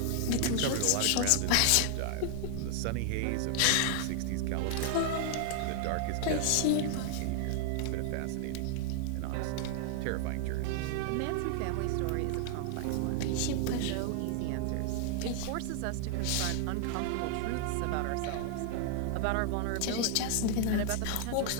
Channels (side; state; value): both; different; correlation 0.00